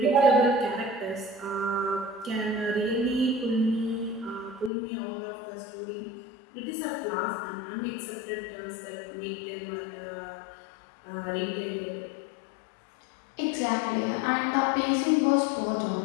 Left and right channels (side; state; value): right; drops out; at 4.7 s